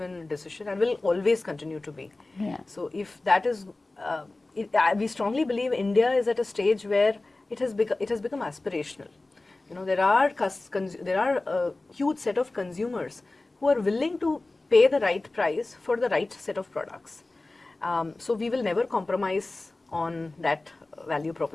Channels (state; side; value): quieter; right; 3.1 dB